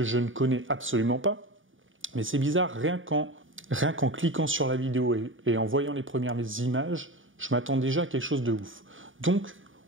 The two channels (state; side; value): late; left; 0.57 ms